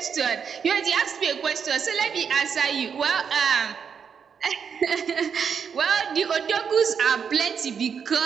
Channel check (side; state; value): left; quieter; 6.8 dB